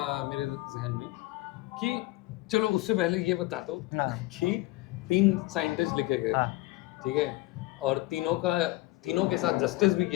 मेरे जहन में कि चलो उससे पहले ये बता दो हाँ। कि 3 साइंटिस्ट लिखे गए, हाँ। ठीक है, और तीनों के साथ जस्टिस भी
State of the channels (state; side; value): quieter; right; 19.5 dB